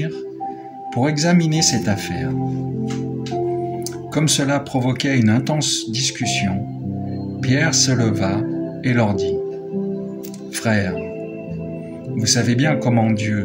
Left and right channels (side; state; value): both; identical; correlation 1.00